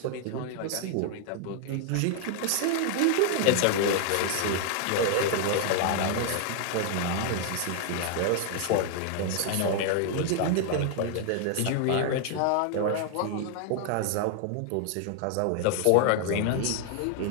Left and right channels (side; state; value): both; different; correlation 0.00